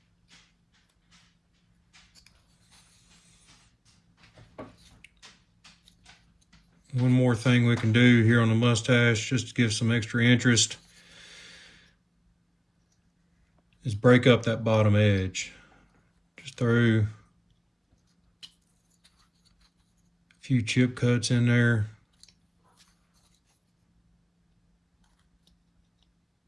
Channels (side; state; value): both; identical; correlation 1.00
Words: One more thing we can do here on the mustache, just to give some extra interest, is break up that bottom edge. Just throw a few chip cuts in there.